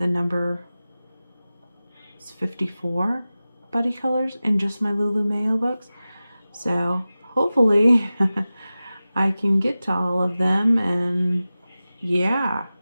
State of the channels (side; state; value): both; inverted; correlation -0.96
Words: number is 54 buddy colors in just my Lulu Mayo books. So hopefully I can get to all of them, and yeah.